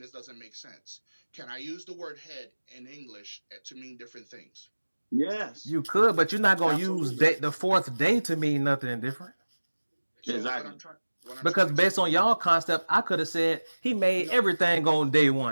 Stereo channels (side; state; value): both; inverted; correlation -1.00